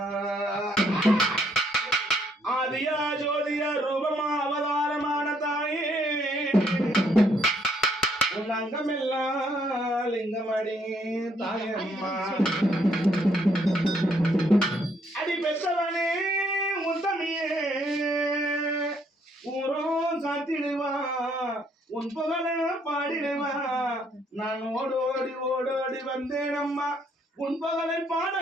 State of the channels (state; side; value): normal; both; correlation 0.69